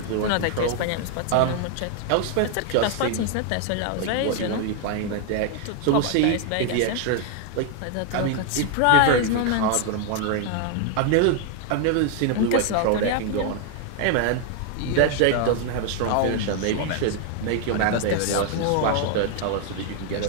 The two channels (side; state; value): both; different; correlation 0.00